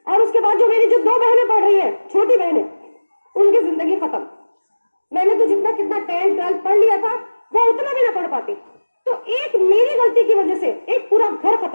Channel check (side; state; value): both; inverted; correlation -1.00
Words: और उसके बाद जो मेरी 2 बहनें पढ़ रही है, छोटी बहनें, उनकी जिंदगी खत्म। मैंने तो जितना कितना 10th 12th पढ़ लिया था वो उतना भी ना पढ़ पाती। तो एक मेरी गलती की वजह से एक पूरा घर